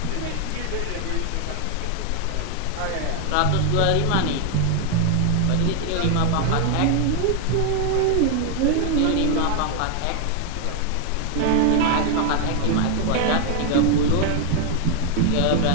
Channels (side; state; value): both; different; correlation 0.00